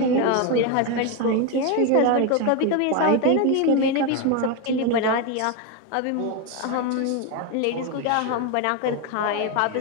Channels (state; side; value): different; both; correlation 0.02